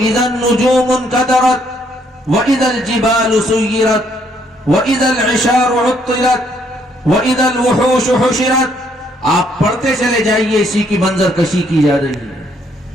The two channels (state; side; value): normal; both; correlation 0.69